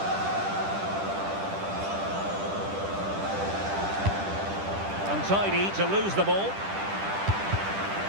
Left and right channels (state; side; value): late; left; 10 ms